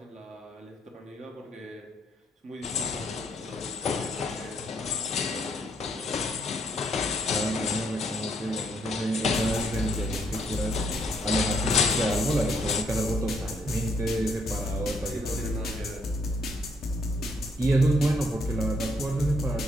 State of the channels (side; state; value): both; normal; correlation 0.71